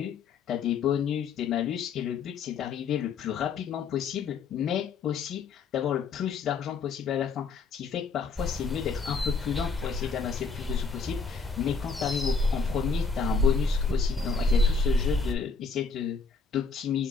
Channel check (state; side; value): quieter; right; 4.9 dB